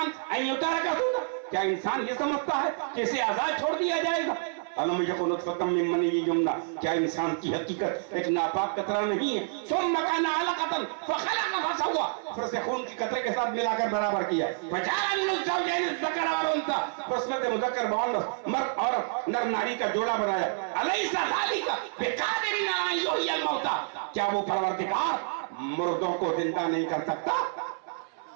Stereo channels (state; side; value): silent; left; 58 dB below the other